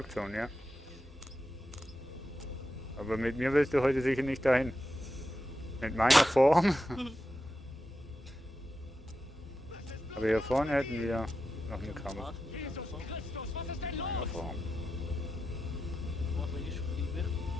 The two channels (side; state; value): both; normal; correlation 0.89